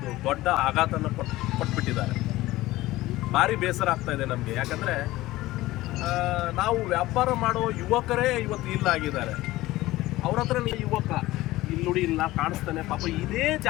ದೊಡ್ಡ ಆಘಾತನ ಕೊಟ್ಬಿಟ್ಟಿದ್ದಾರೆ. ಭಾರಿ ಬೇಸರ ಆಗ್ತಾ ಇದೆ ನಮಗೆ. ಯಾಕಂದರೆ ನಾವು ವ್ಯಾಪಾರ ಮಾಡೋ ಯುವಕರೇ ಇವತ್ತು ಇಲ್ಲ ಆಗಿದ್ದಾರೆ. ಅವ್ರ ಹತ್ರ ಯುವಕ ಇಲ್ಲಿ ನೋಡಿ, ಇಲ್ಲಿ ನಾವು ಕಾಣಿಸ್ತಾನೆ ಪಾಪ ಇದೇ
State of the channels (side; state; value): right; quieter; 17.6 dB